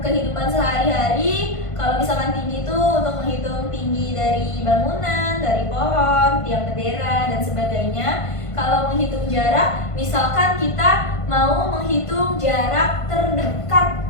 kehidupan sehari-hari, kalau misalkan tinggi itu untuk menghitung tinggi dari bangunan, dari pohon, tiang bendera dan sebagainya. Kalau menghitung jarak, misalkan kita mau menghitung jarak terdekat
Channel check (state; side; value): late; right; 1.5 ms